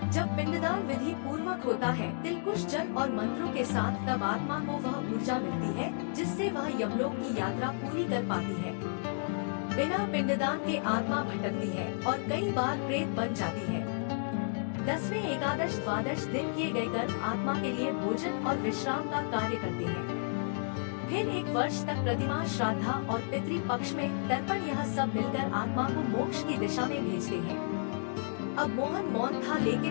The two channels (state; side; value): silent; right; digital silence